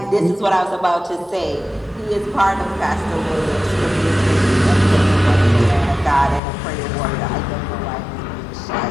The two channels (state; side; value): drops out; right; at 6.4 s